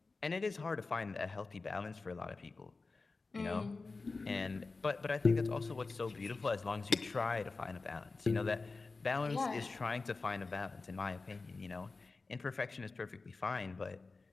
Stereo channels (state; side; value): quieter; right; 3.9 dB